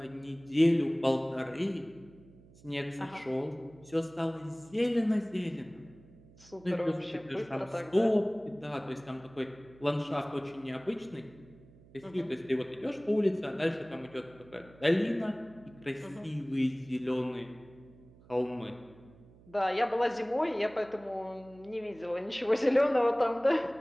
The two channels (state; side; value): noise; right; hum, 24 dB below the sound